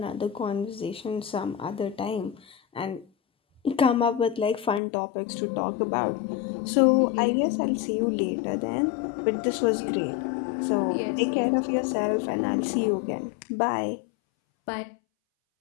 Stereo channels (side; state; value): right; drops out; at 4.8 s